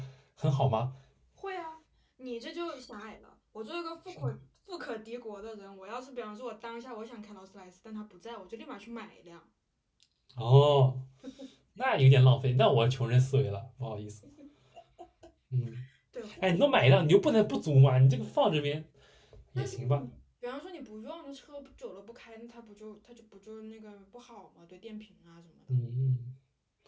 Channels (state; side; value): identical; both; correlation 1.00